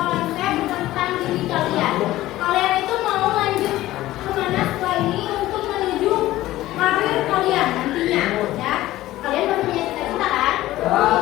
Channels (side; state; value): right; quieter; 15.9 dB